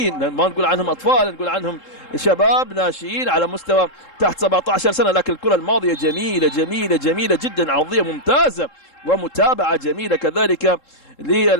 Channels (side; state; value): right; late; 3.7 ms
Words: ما نقول عنهم أطفال، نقول عنهم شباب ناشئين على مستوى تحت 17 سنة، لكن الكرة الماضية جميلة جميلة جميلة جدا، عرضية ممتازة ومتابعة جميلة كذلك